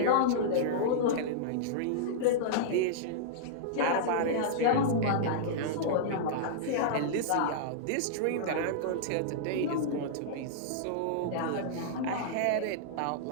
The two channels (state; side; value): different; both; correlation -0.02